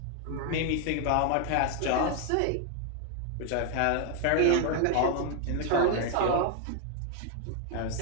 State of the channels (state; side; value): different; both; correlation 0.00